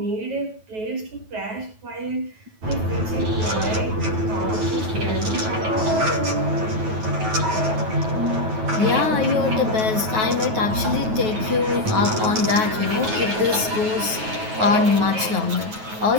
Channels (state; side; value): late; left; 9.3 ms